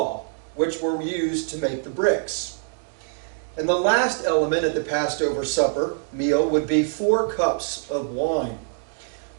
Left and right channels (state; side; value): silent; left; digital silence